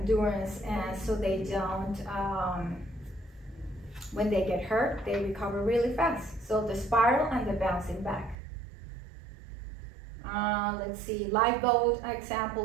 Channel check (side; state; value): left; drops out; at 8.3 s